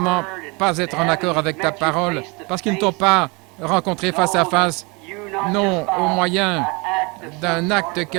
pas être en accord avec ta parole, parce qu'ils ne t'ont pas rencontré face à face, non au moyen d'un acte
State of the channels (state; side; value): quieter; left; 28.6 dB